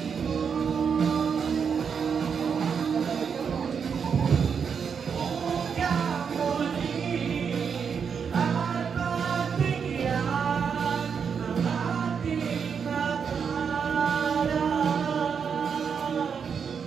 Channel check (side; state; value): left; quieter; 6.6 dB